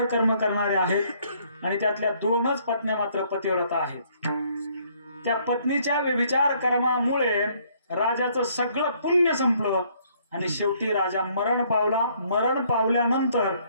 कर्म करणाऱ्या आहेत आणि त्यातल्या 2च पत्न्या मात्र पतिव्रता आहेत. त्या पत्नीच्या व्यभिचार कर्मामुळे राजाचं सगळं पुण्य संपलं आणि शेवटी राजा मरण पावला. मरण पावल्यानंतर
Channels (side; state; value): both; inverted; correlation -0.65